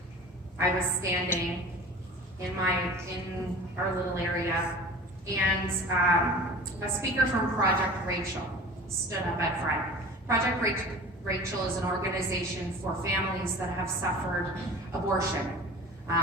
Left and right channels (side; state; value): both; normal; correlation 0.40